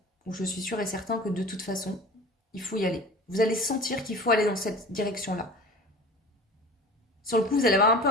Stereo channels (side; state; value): both; normal; correlation 0.38